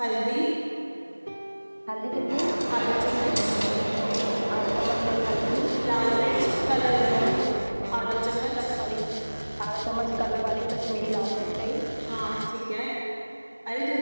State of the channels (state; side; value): inverted; both; correlation -1.00